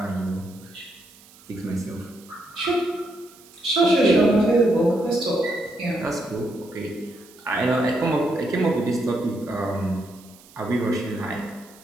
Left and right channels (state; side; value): noise; right; hiss, 24 dB below the sound